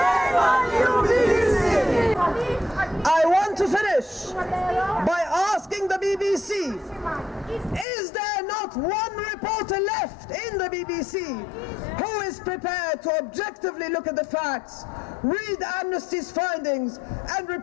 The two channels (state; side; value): drops out; right; at 7.9 s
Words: on you, BBC! I want to finish by asking the BBC, is there not one reporter left in the BBC who is prepared to objectively look at the facts, read Amnesty's findings, and